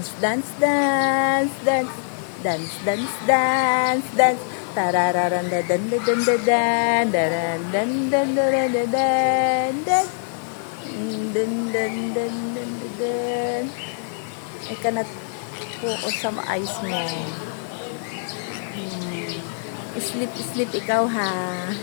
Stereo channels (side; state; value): right; silent; 61 dB below the other